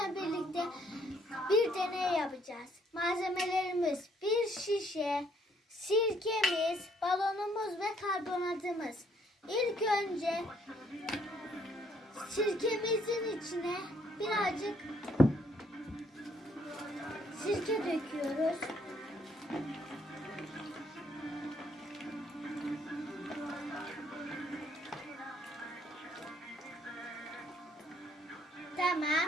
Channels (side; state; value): both; normal; correlation 0.67